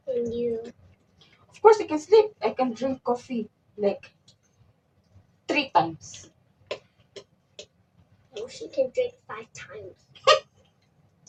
And you. Of course, I can sleep. I can drink coffee like 3 times. Oh, she can drink 5 times.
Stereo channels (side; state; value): both; identical; correlation 1.00